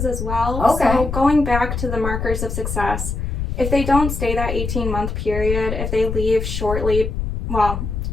as well. Okay. So going back to the markers of success, if they don't stay that 18-month period, if they leave shortly, well,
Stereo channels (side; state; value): left; noise; rumble, 3 dB below the sound